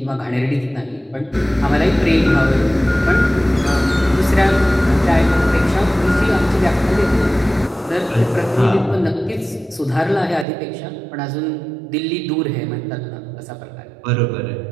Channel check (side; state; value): left; drops out; at 10.5 s